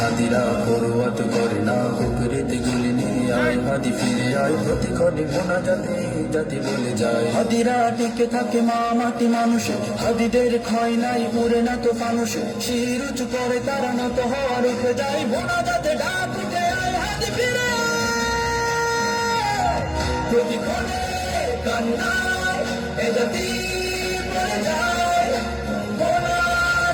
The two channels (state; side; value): identical; both; correlation 1.00